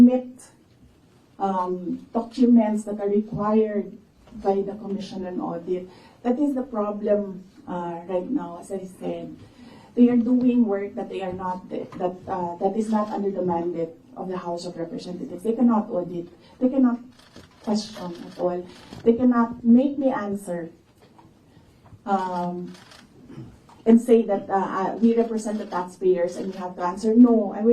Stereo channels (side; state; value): both; identical; correlation 1.00